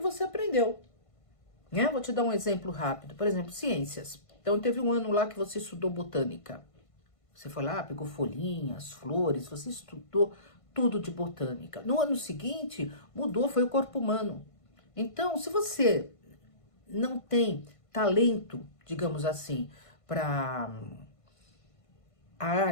aprendeu. Né? Vou te dar um exemplo rápido. Por exemplo, ciências. Então, teve um ano lá que você estudou botânica. Você foi lá, pegou folhinhas, flores, você estudou tudo de botânica. No ano seguinte, mudou, foi o corpo humano. Então, se você não tem talento, digamos assim, para a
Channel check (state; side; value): late; right; 1.5 ms